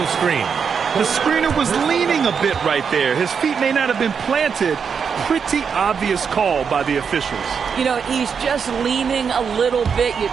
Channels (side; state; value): left; quieter; 6.4 dB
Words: screen. The screener was leaning a bit right there. His feet may not have been planted. Pretty obvious call by the officials. You know, he's just leaning a little bit. You